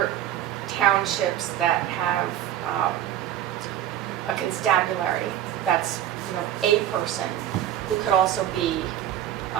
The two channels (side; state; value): left; quieter; 11.4 dB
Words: townships that have a constabulary that's, a person who could also be,